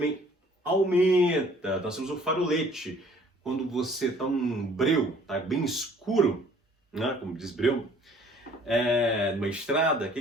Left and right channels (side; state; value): both; normal; correlation 0.56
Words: aumenta. Nós temos o farolete. Quando você está num breu, tá bem escuro, né, como diz breu, numa estrada, o